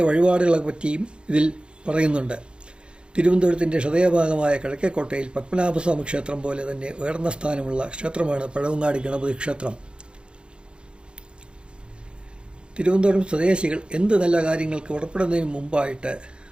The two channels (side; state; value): left; late; 0.054 ms